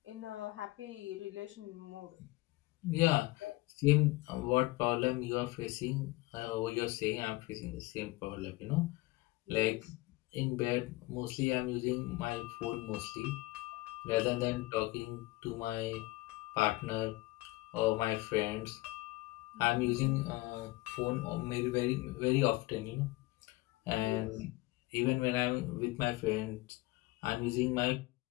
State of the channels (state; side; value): quieter; right; 20.5 dB